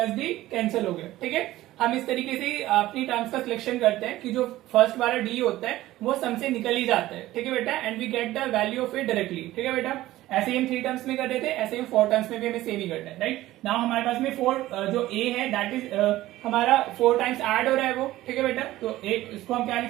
D cancel हो गया। ठीक है, हम इस तरीके से अपनी टर्म्स का सिलेक्शन करते हैं कि जो फर्स्ट वाला डी होता है वो सम से निकल ही जाता है, ठीक है बेटा, and we get the value of it directly, ठीक है बेटा। ऐसे ही हम 3 टर्म्स में कर रहे थे, ऐसे ही 4 टर्म्स में भी हमें सेम ही करना है, राइट। नाउ हमारे पास में 4 जो ए है दैट इज हमारा 4 टाइम्स ऐड हो रहा है वो, ठीक है बेटा। तो एक इसको हम क्या लिख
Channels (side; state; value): left; quieter; 15.9 dB